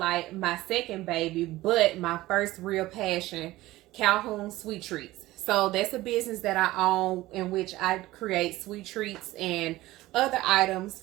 my second baby, but my first real passion, Calhoun Sweet Treats. So that's a business that I own in which I create sweet treats and other items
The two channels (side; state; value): left; quieter; 17.5 dB